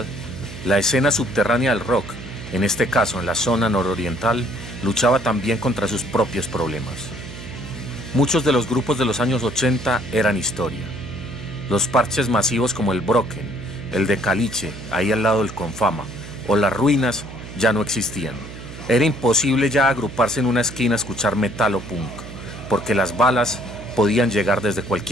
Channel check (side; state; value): right; noise; hum, 13 dB below the sound